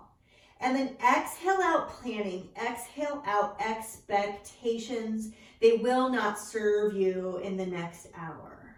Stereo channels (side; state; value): both; identical; correlation 1.00